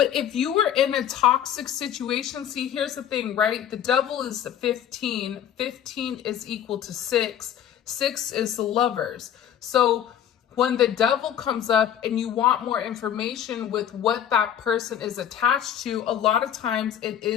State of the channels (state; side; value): quieter; right; 10.0 dB